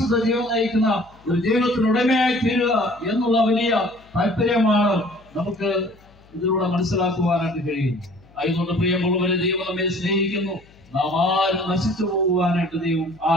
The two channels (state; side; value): noise; left; hum, 28 dB below the sound